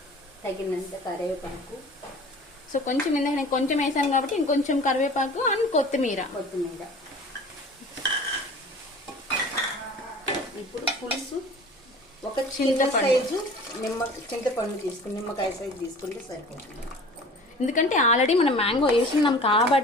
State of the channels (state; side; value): normal; both; correlation 0.43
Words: తగినంత కరివేపాకు. సో కొంచెం ఇందాక నేను కొంచెం వేసాను కాబట్టి ఇంకొంచెం కరివేపాకు అండ్ కొత్తిమీర. ఇప్పుడు పులుసు ఒక చిన్న సైజు చింతపండు తీసుకుని, నిమ్మకాయ సైజు తీసుకుంటే సరిపోతుంది. ఎందుకంటే ఆల్రెడీ మనం మ్యాంగో వేసుకున్నాం